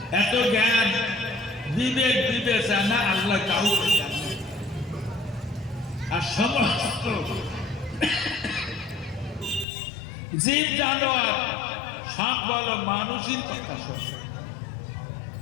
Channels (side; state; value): right; drops out; at 9.7 s